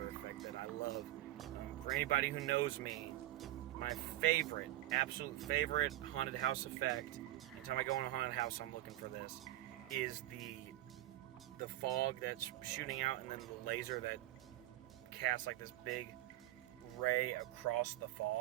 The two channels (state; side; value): quieter; left; 15.3 dB